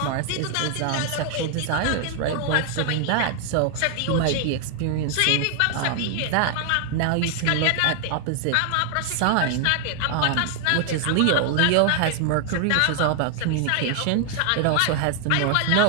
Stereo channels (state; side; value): different; both; correlation 0.00